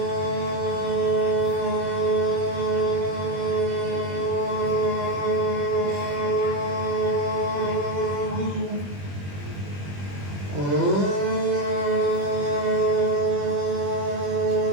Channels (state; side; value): late; left; 21 ms